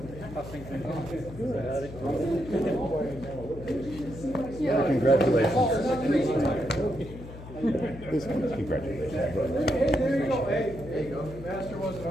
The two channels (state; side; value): noise; left; hum, 13 dB below the sound